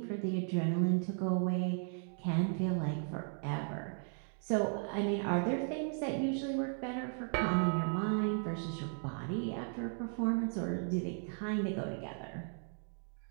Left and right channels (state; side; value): silent; left; 54 dB below the other